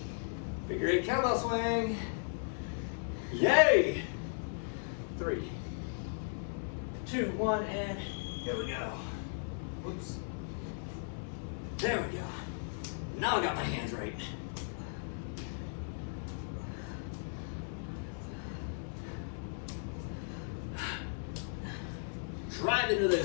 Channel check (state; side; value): silent; right; 54 dB below the other